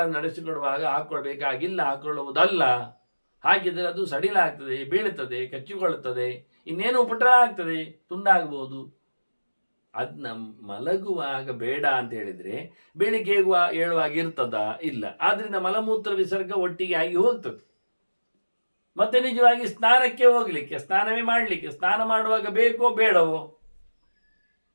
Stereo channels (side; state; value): both; inverted; correlation -1.00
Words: ನಡೆಸಿಕೊಡುವಾಗ ಹಾಕೊಳ್ಬೇಕಾಗಿಲ್ಲ, ಹಾಕೊಳ್ಳುವುದಲ್ಲ. ಹಾಗಿದ್ರೆ ಅದು ಸಡಿಲಾಗ್ತದೆ, ಬೀಳುತ್ತದೆ, ಕಚ್ಚಿಕೊಳ್ಳುತ್ತದೆ, ಇನ್ನೇನು ಉಪಟಳ ಆಗ್ತದೆ, ತುಂಡಾಗಬಹುದು. ಅದನ್ನ ಮಲಗುವಾಗ ಬೇಡ ಅಂತ ಹೇಳಿದ್ರೆ ಬೆಳಿಗ್ಗೆ ಏಳುವಾಗ ಇರ್ತದ? ಇಲ್ಲ. ಆದ್ರಿಂದ ಮಲಮೂತ್ರ ವಿಸರ್ಗ ಒಟ್ಟಿಗೆ ಆಗಿ ಹೋಗ್ತದೆ. ಮತ್ತೆ ನಿಜವಾಗಿ ಸ್ನಾನಕ್ಕೆ ಹೋಗ್ಲಿಕ್ಕೆ, ಸ್ನಾನವೇ ಮಾಡಲಿಕ್ಕೆ, ಸ್ನಾನ ಮಾಡುವಾಗ ಬೇಕೋ ಬೇಡವೋ,